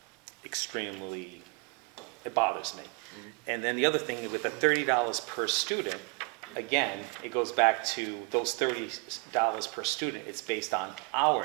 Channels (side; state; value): left; quieter; 31.3 dB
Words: extremely, it bothers me. And then the other thing, with the $30 per student, again, it goes back to those $30 per student, it's based on our